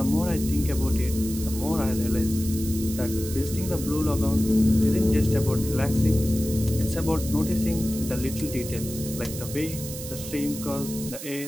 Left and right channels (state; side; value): noise; right; hiss, 10 dB below the sound